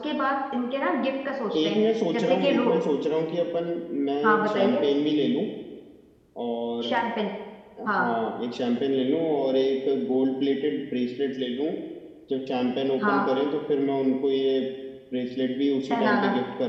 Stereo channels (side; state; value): both; identical; correlation 1.00